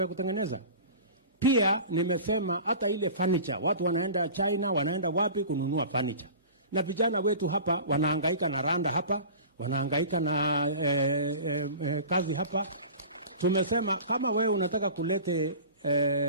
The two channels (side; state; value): both; inverted; correlation -0.38